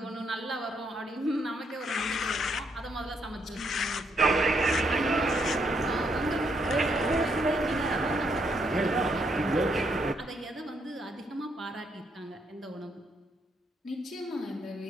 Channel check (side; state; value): both; normal; correlation 0.74